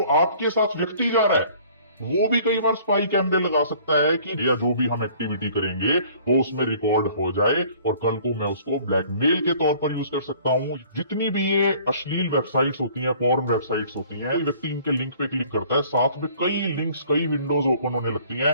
आपके साथ व्यक्ति जा रहा है वो भी कई बार स्पाई कैमरे लगा सकता है कि या जो भी हम एक्टिविटी करेंगे वो उसमें रिकॉर्ड हो जाए और कल को मैं उसको ब्लैकमेल के तौर पर यूज कर सकता हूं। जितनी भी ये अश्लील वेबसाइट्स होती हैं, पॉर्न वेबसाइट्स होती हैं, कोई व्यक्ति इनके लिंक पे क्लिक करता है, साथ में कई लिंक्स, कई विंडोज ओपन होने लगती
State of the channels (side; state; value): both; inverted; correlation -0.53